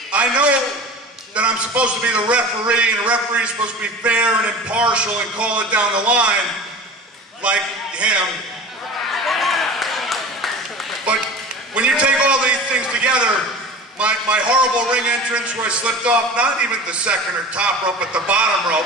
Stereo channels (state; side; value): normal; both; correlation 0.36